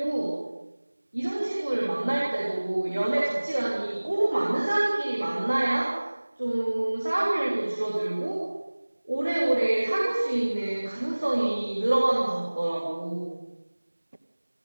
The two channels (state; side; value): inverted; both; correlation -1.00